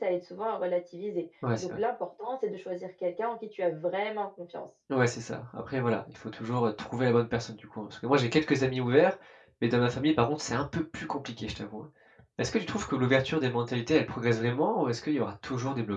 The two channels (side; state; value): both; identical; correlation 1.00